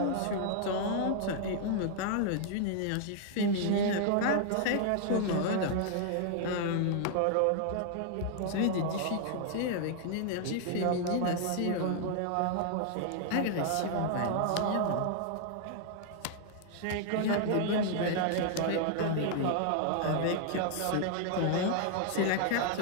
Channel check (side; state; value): both; different; correlation -0.01